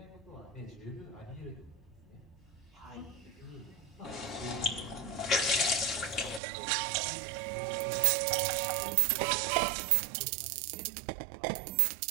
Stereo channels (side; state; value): left; drops out; at 6.4 s